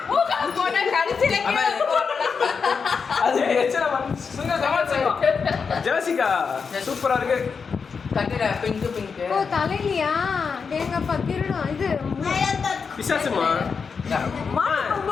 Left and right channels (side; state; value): right; quieter; 5.6 dB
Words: போனா கடைசில அது எச்சல சுங்க சமாச்சாரம். ஜெசிகா சூப்பரா இருக்கு. கட்டிடா பிங்க் பிங்க். ஓ தலையிலையா தேங்கப்பா கிரணும் இது பிசாசுமா